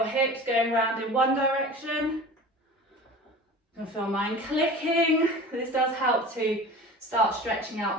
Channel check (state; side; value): normal; both; correlation 0.38